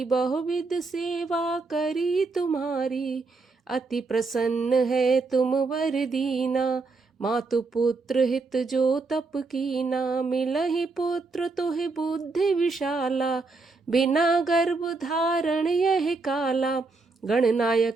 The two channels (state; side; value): quieter; left; 3.9 dB